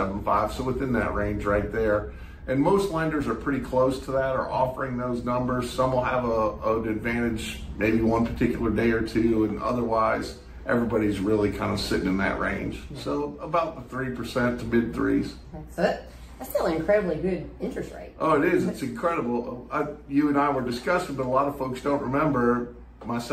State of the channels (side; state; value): both; identical; correlation 1.00